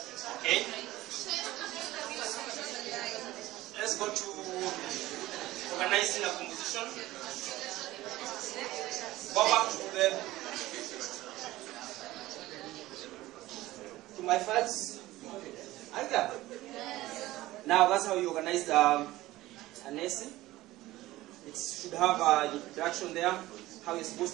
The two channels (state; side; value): quieter; left; 17.1 dB